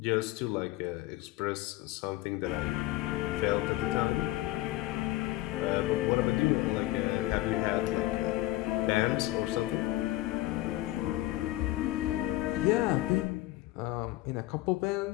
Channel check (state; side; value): quieter; right; 16.9 dB